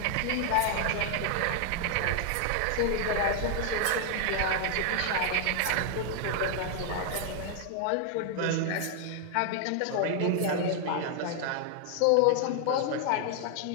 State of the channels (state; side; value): different; both; correlation 0.00